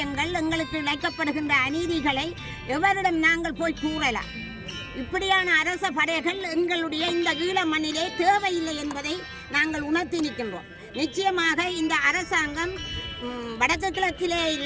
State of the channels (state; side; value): identical; both; correlation 1.00